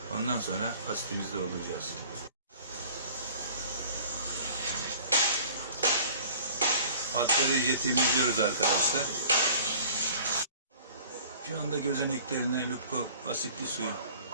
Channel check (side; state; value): both; inverted; correlation -0.48